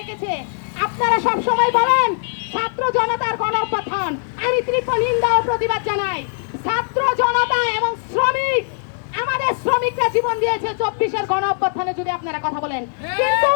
আপনারা সব সময় বলেন ছাত্র জনতার গণঅভ্যুত্থান, আমি তীব্র নিন্দা ও প্রতিবাদ জানাই। ছাত্র জনতা এবং শ্রমিক, আমাদের শ্রমিকরা জীবন দিয়েছে 24-এর গণঅভ্যুত্থানে, যদি আপনারা কথা বলেন, কিন্তু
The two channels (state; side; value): silent; right; digital silence